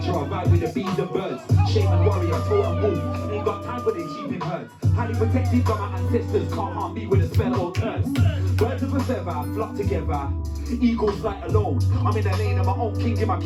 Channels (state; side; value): identical; both; correlation 1.00